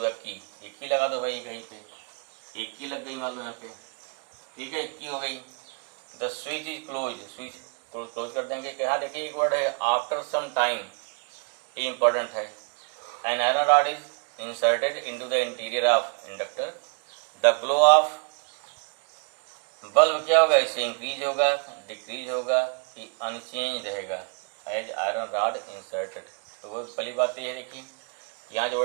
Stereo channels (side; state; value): left; quieter; 39.4 dB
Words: the key. एक की लगा दो भाई, कहीं पे एक की लग गई मान लो यहाँ पे, ठीक है, एक की हो गई। The switch is close, switch close कर देंगे। क्या देखिए एक वर्ड है आफ्टर सम टाइम, ये इंपॉर्टेंट है। An iron rod is inserted into the interior of inductor. The glow of bulb क्या होगा, इससे इंक्रीज होगा, डिक्रीज होगा कि अनचेंज रहेगा एज आयरन रॉड इंसर्टेड। तो वो पहली बात ये है, देखिए यहाँ जो